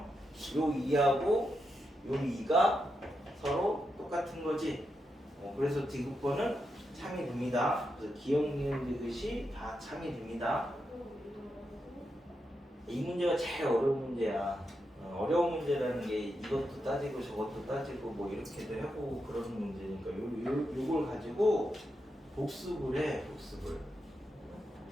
2하고 요 2가 서로 똑같은 거지. 그래서 D국번은 참이 됩니다. 그래서 기억, 니은, 디귿이 다 참이 됩니다. 이 문제가 제일 어려운 문제야. 어려운 문제라는 게 이것도 따지고 저것도 따지고 뭐 이렇게도 해보고 그런 문제니까 요걸 가지고 복습을 해. 복습을.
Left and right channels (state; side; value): normal; both; correlation 0.85